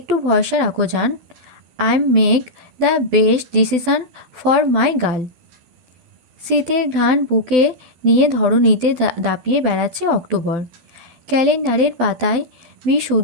ভরসা রাখো জান, I make the best decision for my girl. শীতের ঘ্রাণ বুকে নিয়ে ধরণীতে দাপিয়ে বেড়াচ্ছে অক্টোবর। ক্যালেন্ডারের পাতায়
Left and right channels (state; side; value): late; left; 12 ms